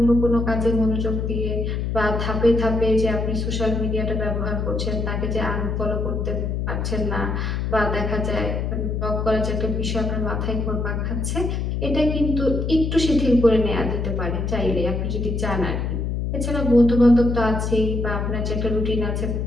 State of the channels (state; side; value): noise; left; hum, 1 dB below the sound